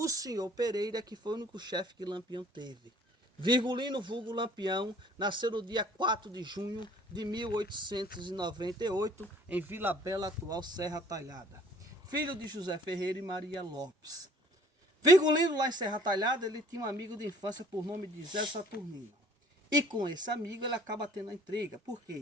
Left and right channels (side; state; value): both; normal; correlation 0.54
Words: senhor Pereira, que foi o único chefe que Lampião teve. Virgulino vulgo Lampião nasceu no dia 4 de junho de 1898, em Vila Bela, atual Serra Talhada. Filho de José Ferreira e Maria Lopes. Virgulino, lá em Serra Talhada, ele tinha um amigo de infância por nome de Zé Saturnino. E com esse amigo ele acaba tendo a intriga. Por